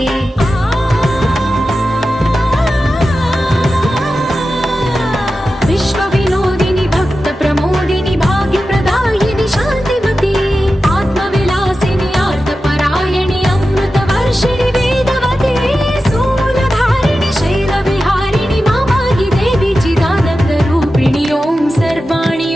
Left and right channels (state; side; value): normal; both; correlation 0.93